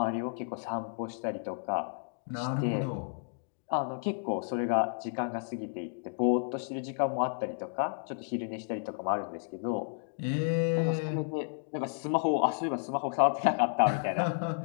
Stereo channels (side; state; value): right; silent; digital silence